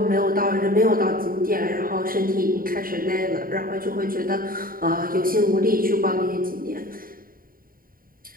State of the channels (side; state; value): left; late; 0.41 ms